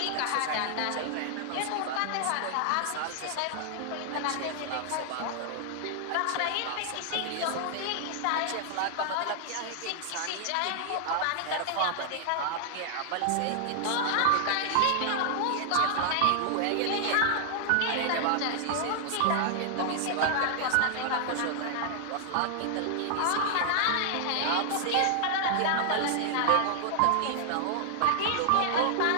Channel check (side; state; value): both; different; correlation 0.00